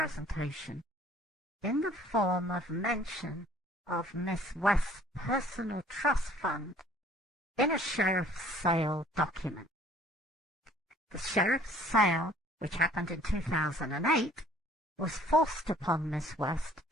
in the form of mention of Miss West's personal trust fund in a sheriff's sale document. The sheriff's sale, which happened in 2008, was forced upon Miss West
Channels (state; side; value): normal; both; correlation 0.56